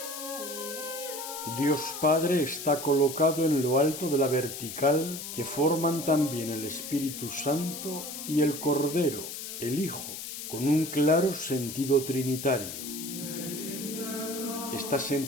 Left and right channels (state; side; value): noise; left; hiss, 8 dB below the sound